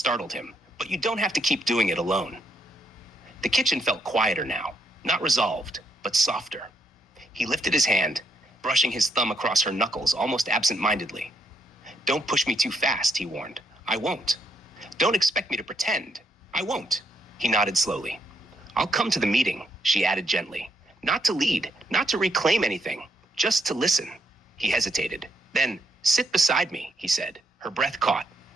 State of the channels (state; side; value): normal; both; correlation 0.76